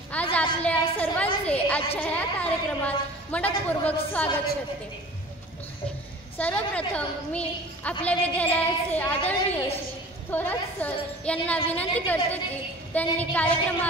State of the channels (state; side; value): normal; both; correlation 0.43